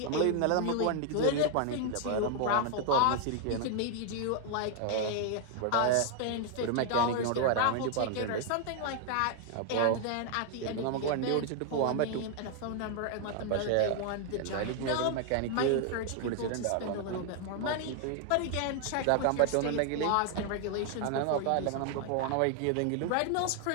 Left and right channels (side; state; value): both; different; correlation 0.00